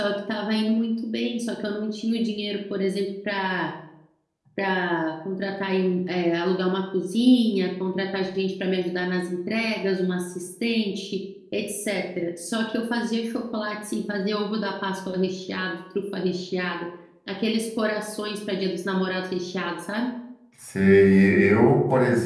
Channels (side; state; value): both; identical; correlation 1.00